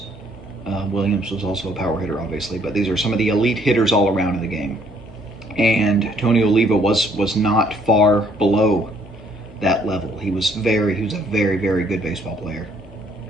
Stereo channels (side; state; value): both; normal; correlation 0.64